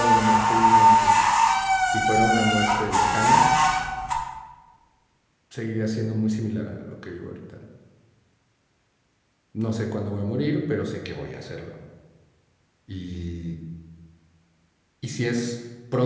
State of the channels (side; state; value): both; identical; correlation 1.00